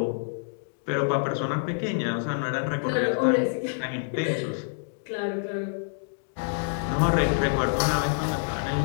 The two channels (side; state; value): right; silent; digital silence